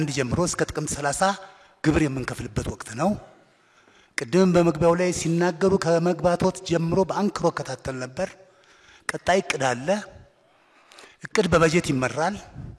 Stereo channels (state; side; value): identical; both; correlation 1.00